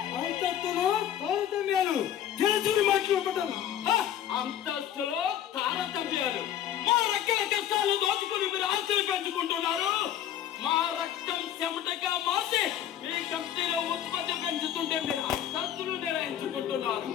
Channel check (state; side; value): quieter; right; 10.6 dB